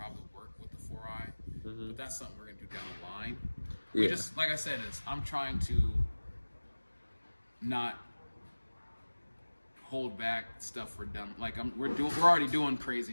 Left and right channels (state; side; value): inverted; both; correlation -1.00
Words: work with the 4i, but that's something we're going to do down the line. We just, like I said, I'm trying to not hold back stuff for done. We're already doing